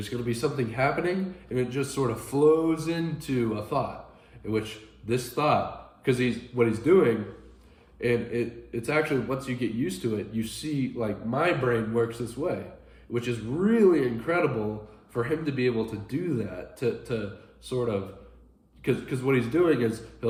going to be something happening, and it just sort of flows into a thought, in which this thought, because what he's doing, and it's actually, once you get used to it, you see, like, my brain works this way, which is really incredible for him to be able to do that, to sort of, because what he's doing is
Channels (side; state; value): both; identical; correlation 1.00